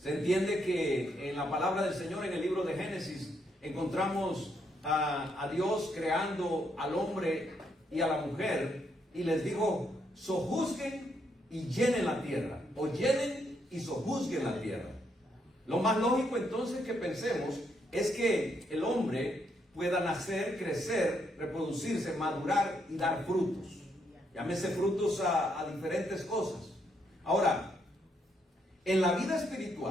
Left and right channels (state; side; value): normal; both; correlation 0.76